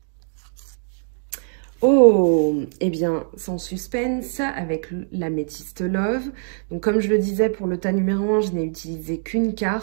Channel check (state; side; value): silent; left; digital silence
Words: Oh, eh bien, sans suspense, avec l'améthyste Love. Donc, comme je le disais, pour le tas numéro 1, je n'ai utilisé qu'une